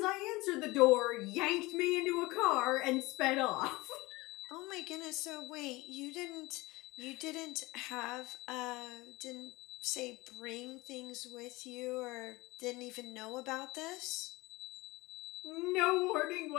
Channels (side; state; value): right; quieter; 21.5 dB